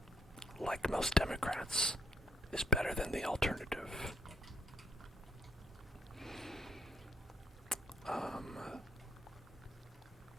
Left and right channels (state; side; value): normal; both; correlation 0.72